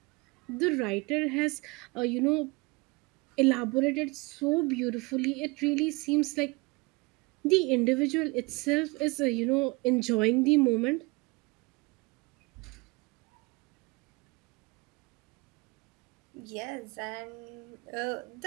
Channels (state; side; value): quieter; left; 26.0 dB